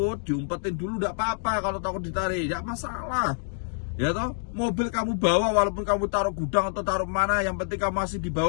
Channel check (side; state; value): right; silent; digital silence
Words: diumpetin dulu enggak apa-apa. Kalau takut ditarik, enggak masalah. Ya toh, mobil kamu bawa walaupun kamu taruh gudang atau taruh mana, yang penting kamu masih di